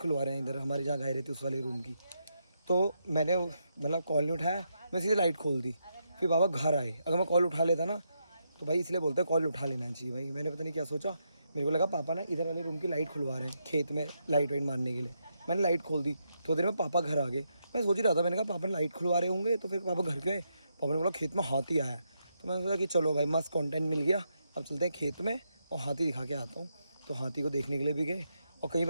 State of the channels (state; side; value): inverted; both; correlation -0.81